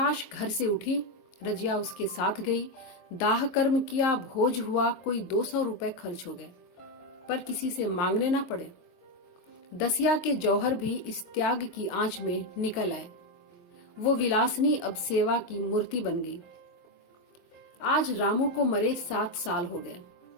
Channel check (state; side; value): late; right; 23 ms